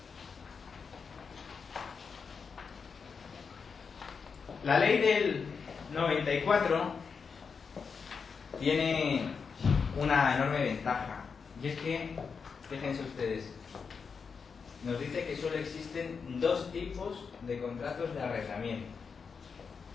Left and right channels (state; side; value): quieter; right; 5.6 dB